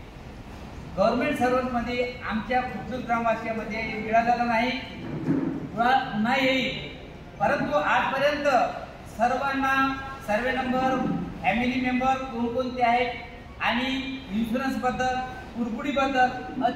गव्हर्नमेंट सर्व्हंटमध्ये आमच्या खुर्दूर ग्रामवासियामध्ये मिळालेला नाही, पुन्हा येईल. परंतु आजपर्यंत सर्वांना सर्वे नंबर, फॅमिली मेंबर कोणकोणते आहेत आणि इन्शुरन्सबद्दल, कुरकुडीबद्दल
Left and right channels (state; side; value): identical; both; correlation 1.00